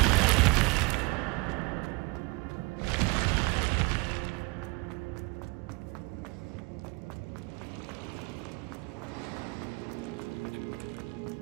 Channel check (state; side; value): quieter; left; 27.4 dB